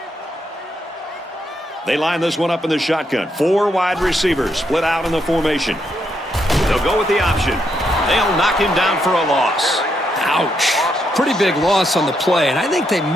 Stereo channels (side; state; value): both; normal; correlation 0.78